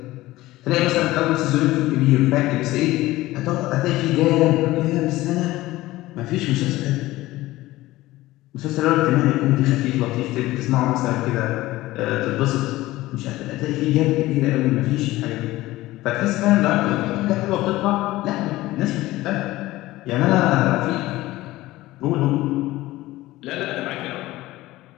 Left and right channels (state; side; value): quieter; right; 17.5 dB